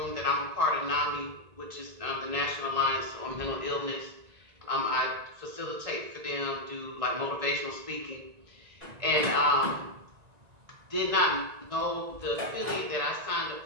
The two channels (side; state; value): left; late; 1.9 ms